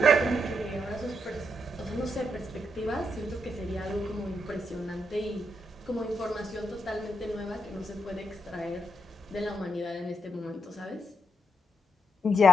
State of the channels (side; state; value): both; normal; correlation 0.81